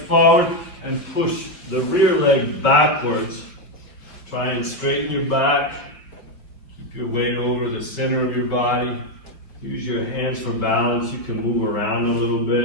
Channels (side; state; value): right; late; 5.1 ms